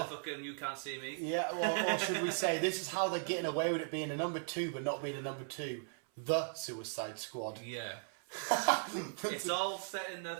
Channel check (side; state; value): left; silent; 53 dB below the other